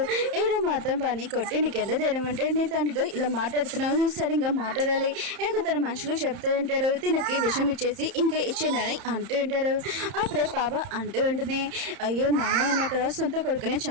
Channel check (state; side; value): late; left; 31 ms